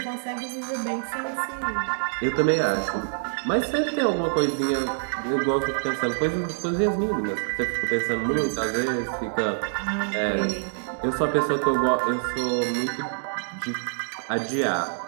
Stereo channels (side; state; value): left; silent; digital silence